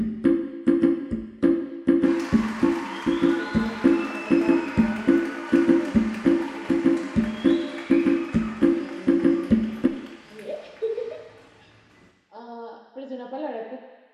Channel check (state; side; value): identical; both; correlation 1.00